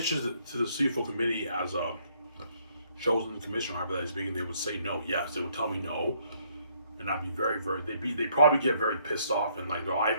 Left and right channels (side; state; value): both; inverted; correlation -0.68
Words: to the CFO committee as a chosen commissioner, however that is speaking, they would say no. Yes, they would tell me no, and I'd be they'd probably get very pissed off and like,